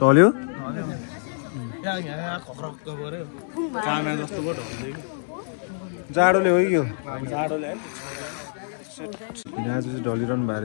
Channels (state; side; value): silent; right; digital silence